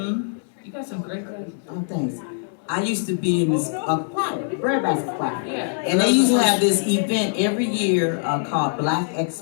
You got some great glasses. Oh, thanks. I used to be in this choir, Brad Basket Choir. Yeah. And they used to have this event every year called Black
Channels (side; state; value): right; silent; digital silence